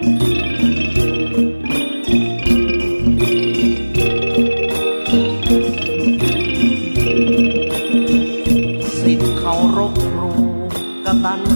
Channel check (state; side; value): inverted; both; correlation -1.00